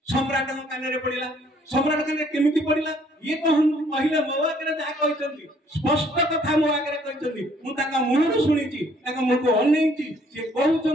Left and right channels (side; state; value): both; normal; correlation 0.62